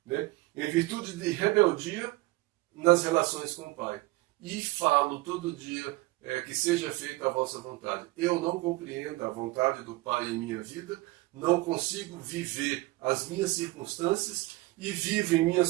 né? Em virtude de rebeldia nas relações com o Pai. E falo todo dia que seja feita a vossa vontade. Eu não compreendo a vontade do Pai em minha vida, não consigo viver as minhas circunstâncias e vivo em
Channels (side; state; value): left; quieter; 20.5 dB